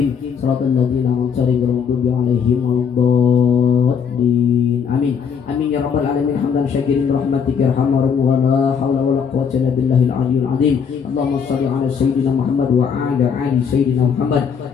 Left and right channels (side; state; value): right; quieter; 6.8 dB